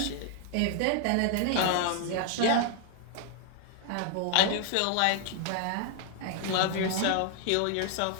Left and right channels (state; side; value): different; both; correlation 0.00